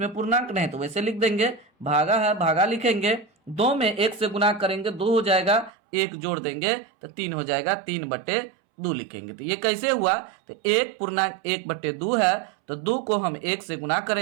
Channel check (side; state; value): left; drops out; at 5.7 s